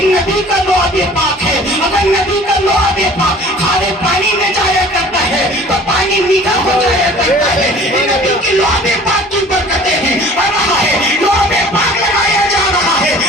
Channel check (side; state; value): both; normal; correlation 0.48